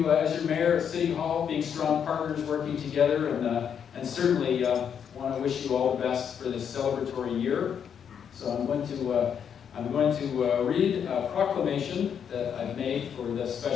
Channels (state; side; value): quieter; right; 7.9 dB